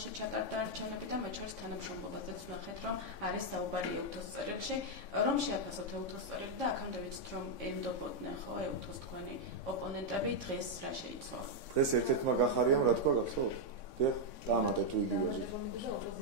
ჩატარდა არჩევნები და მათ შორის თანამშრომლობაზეც ვნახეთ რომ არის საუბარი ეუთოს წერილში, რომ შეაფასოთ ეუთოს წერილი და აქამდე ვიცით რომ ენდობოდნენ ხო ეუთოს თქვენი ოპონენტები, დღეს რა შეიცვალა? დღეს ერთ-ერთმა გახარიამ რა თქვა გახსოვთ? დიახ, დამატე თუ იგივე.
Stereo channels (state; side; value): late; right; 3.6 ms